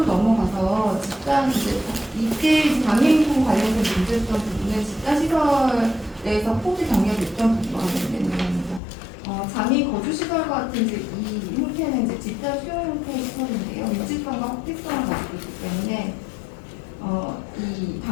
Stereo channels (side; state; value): right; drops out; at 8.8 s